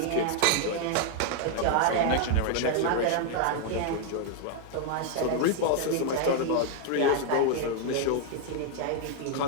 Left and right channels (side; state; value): both; different; correlation 0.00